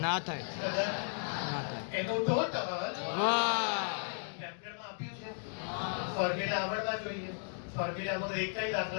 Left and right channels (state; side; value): silent; right; 54 dB below the other